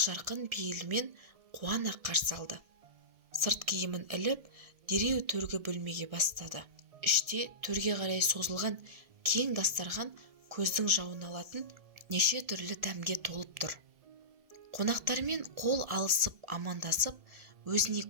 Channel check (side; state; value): left; late; 1.7 ms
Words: пейілмен қуана қарсы алды. Сырт киімін іліп, дереу төргі бөлмеге бастады. Іште төрге қарай созылған кең дастархан көздің жауын алатын неше түрлі дәмге толып тұр. Қонақтармен қол алысып амандасып, өзіне